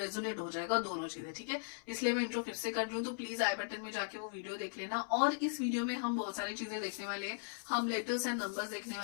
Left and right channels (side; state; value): right; silent; 52 dB below the other